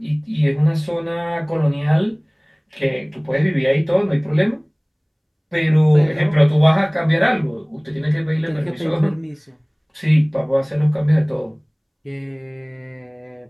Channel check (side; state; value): both; identical; correlation 1.00